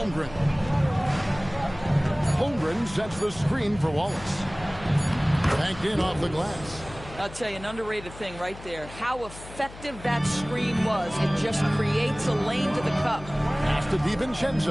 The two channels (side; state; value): left; noise; hum, 16 dB below the sound